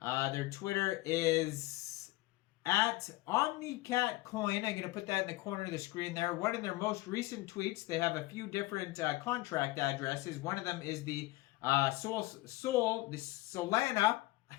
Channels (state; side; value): quieter; right; 19.6 dB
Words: at Omnicat Coin. I'm going to put that in the corner of the screen there. One of their most recent tweets, they have a few different contract addresses. One of them is the Solana